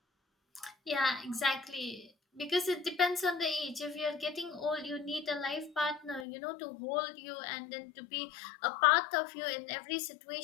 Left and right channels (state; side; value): drops out; right; at 6.2 s